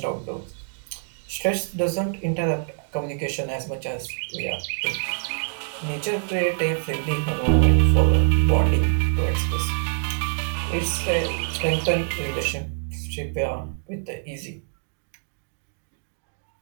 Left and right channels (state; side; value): silent; left; 62 dB below the other